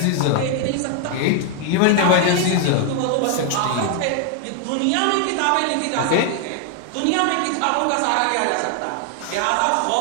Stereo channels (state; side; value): different; both; correlation 0.00